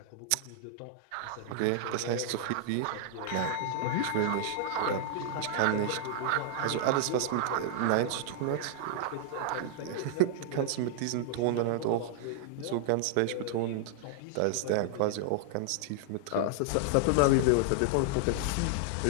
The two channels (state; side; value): different; both; correlation -0.01